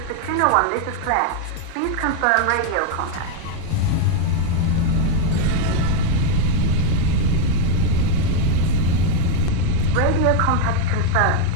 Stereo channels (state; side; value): different; both; correlation 0.00